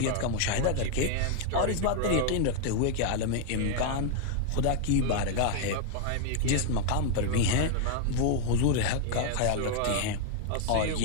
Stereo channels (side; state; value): both; different; correlation 0.00